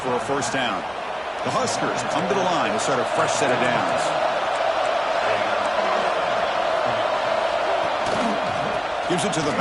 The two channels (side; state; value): both; identical; correlation 1.00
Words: for a first down. The Huskers come to the line to start a fresh set of downs. Gives it to the